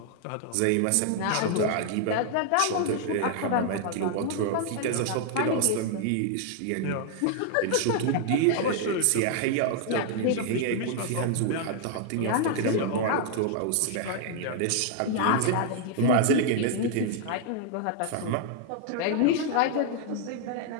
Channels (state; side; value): different; both; correlation 0.00